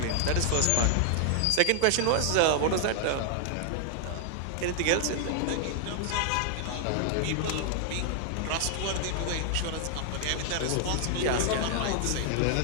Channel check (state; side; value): different; both; correlation 0.00